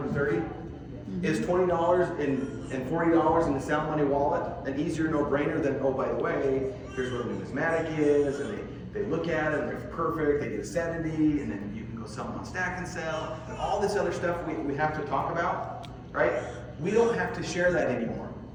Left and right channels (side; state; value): both; identical; correlation 1.00